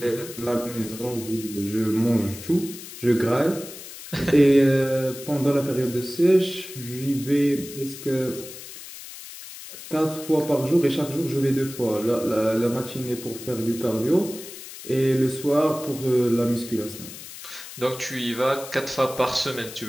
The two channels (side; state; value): left; noise; hiss, 13 dB below the sound